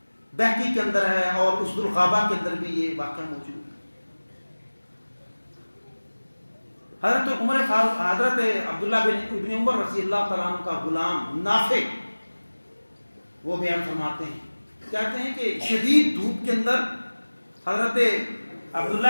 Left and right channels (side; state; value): both; inverted; correlation -1.00